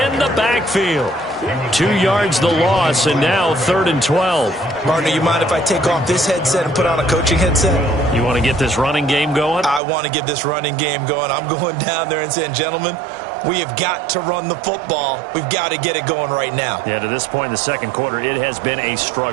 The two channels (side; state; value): left; drops out; at 9.8 s